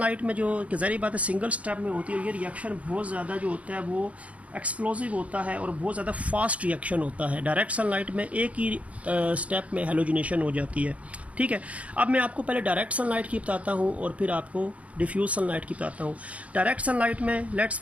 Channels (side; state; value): left; late; 0.066 ms